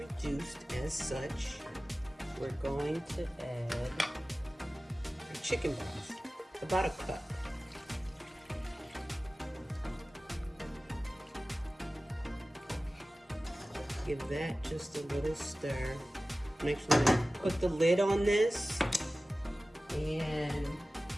as such, we're going to add our chicken broth, about a cup. Give that just a little stir. I'm actually going to put the lid on this, and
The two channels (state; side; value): normal; both; correlation 0.97